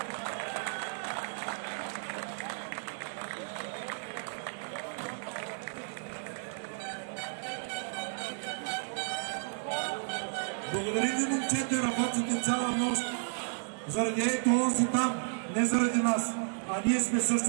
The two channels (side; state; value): left; silent; digital silence